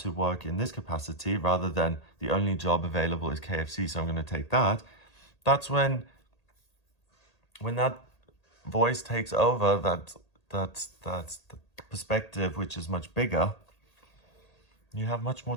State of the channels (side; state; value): right; late; 1.8 ms